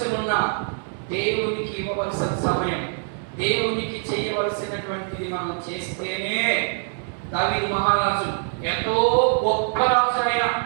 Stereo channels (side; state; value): left; silent; 63 dB below the other